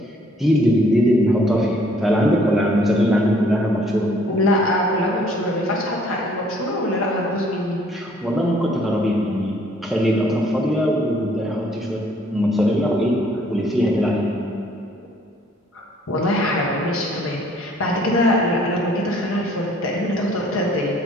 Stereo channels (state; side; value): normal; both; correlation 0.61